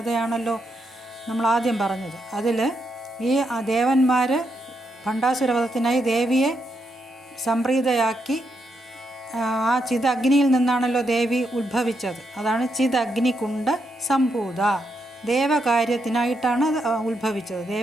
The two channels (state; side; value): normal; both; correlation 0.81